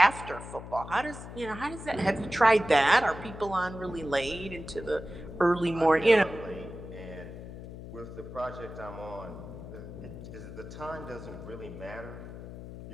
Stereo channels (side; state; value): left; noise; hum, 12 dB below the sound